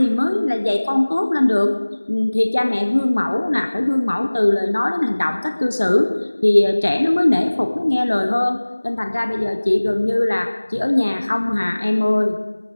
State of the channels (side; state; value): both; inverted; correlation -1.00